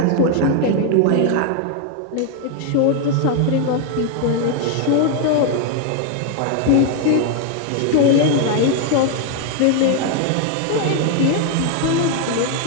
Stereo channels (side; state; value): both; different; correlation 0.01